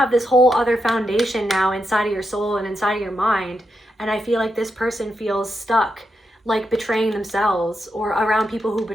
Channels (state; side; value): normal; both; correlation 0.84